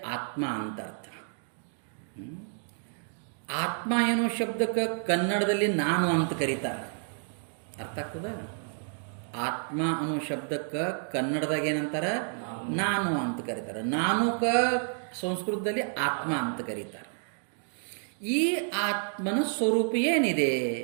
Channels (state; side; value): silent; left; 58 dB below the other